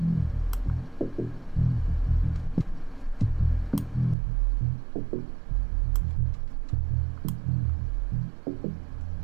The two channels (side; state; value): left; drops out; at 4.2 s